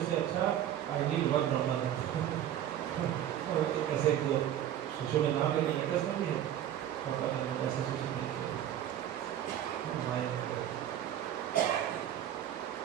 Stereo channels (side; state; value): left; quieter; 11.2 dB